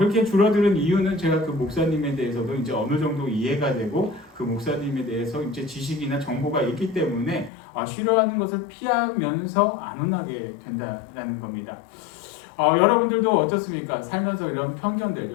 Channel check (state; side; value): drops out; right; at 7.5 s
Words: 줄어드는 이유는 제가 그 목사님에 대해서도 이제 어느 정도 이해가 되고 그 목사님에 대해서 이제 지식이나 정보가 있기 때문에 싫어하는 것을 피하면서 안 혼나게 된다는 겁니다. 여러분들도 어떻습니까? 살면서 이런 편견들,